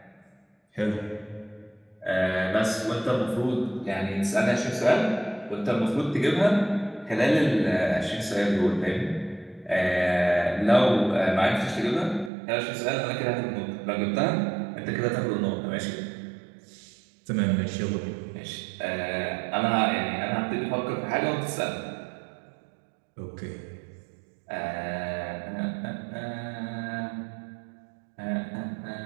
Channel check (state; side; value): drops out; left; at 12.3 s